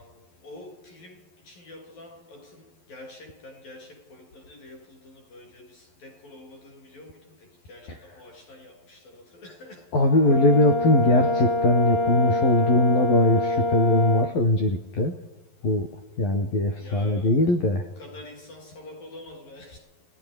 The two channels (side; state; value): right; late; 11 ms